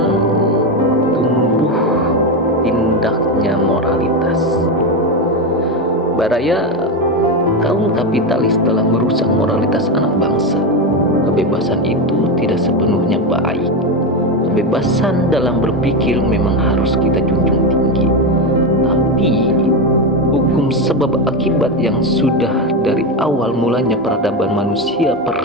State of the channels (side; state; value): both; normal; correlation 0.13